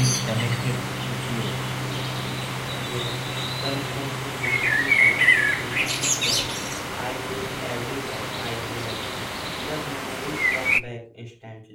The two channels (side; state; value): both; identical; correlation 1.00